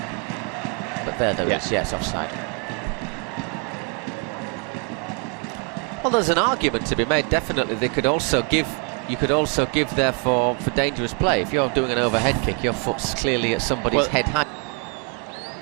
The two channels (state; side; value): quieter; left; 34.5 dB